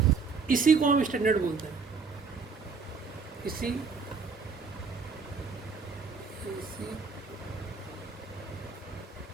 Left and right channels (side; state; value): left; quieter; 5.0 dB